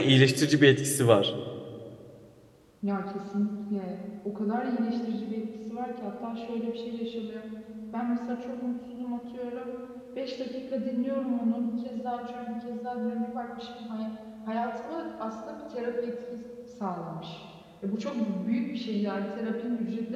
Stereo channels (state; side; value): identical; both; correlation 1.00